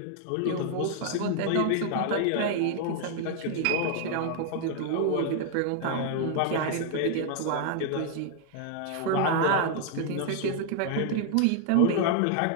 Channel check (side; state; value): both; different; correlation 0.00